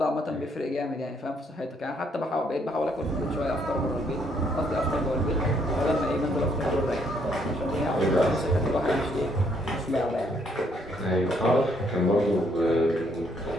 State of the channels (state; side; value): normal; both; correlation 0.70